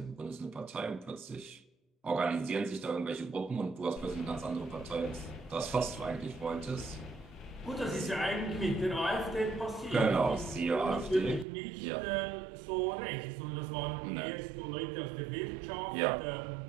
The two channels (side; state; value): left; drops out; at 11.5 s